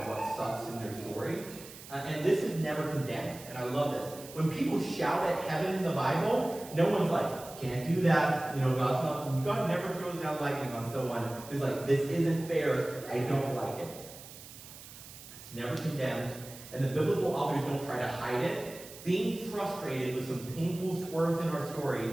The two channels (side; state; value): right; noise; hiss, 16 dB below the sound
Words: what sucks in their story. And this is never condemned. And I love this. When people shout at heaven in the Bible, no one's like, can't do that. God never throws down lightning on someone who's like, this isn't fair. I don't like it. It's never condemned. And the biblical authors don't try to hide it. Being frustrated with some painful swerves in our